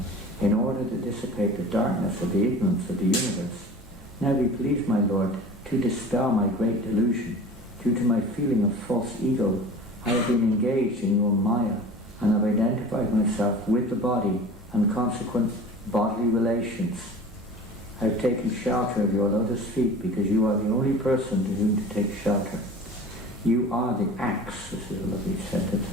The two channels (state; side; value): normal; both; correlation 0.39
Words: in order to dissipate the darkness of the ignorance of the universe. Now be pleased, my Lord, to dispel my great delusion. Due to my feeling of false ego, I have been engaged in your Maya and have identified myself with the body and consequent bodily relations. I have taken shelter of your lotus feet because you are the only person to whom to take shelter. You are the axe, this is a lovely sentence.